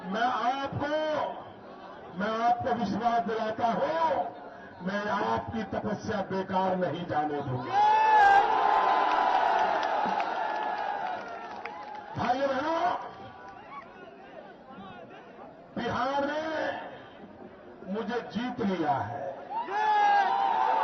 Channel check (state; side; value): identical; both; correlation 1.00